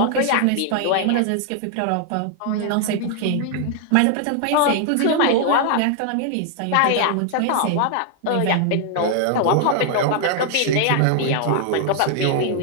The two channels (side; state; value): both; different; correlation 0.00